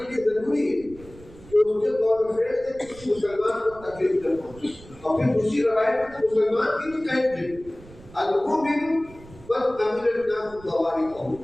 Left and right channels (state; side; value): noise; right; rumble, 21 dB below the sound